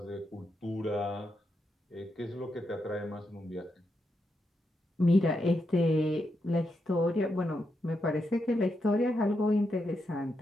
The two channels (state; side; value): normal; both; correlation 0.83